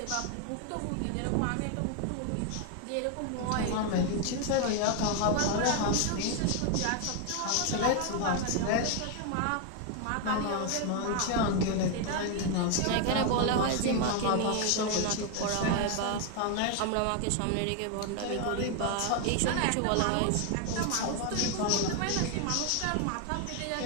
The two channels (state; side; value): different; both; correlation 0.01